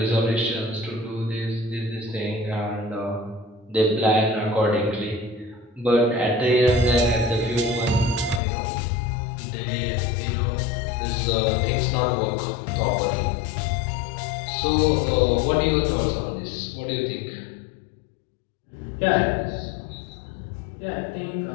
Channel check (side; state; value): right; drops out; at 8.4 s